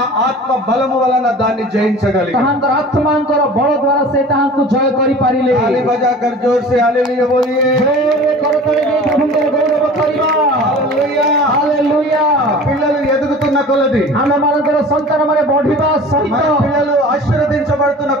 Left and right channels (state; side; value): normal; both; correlation 0.41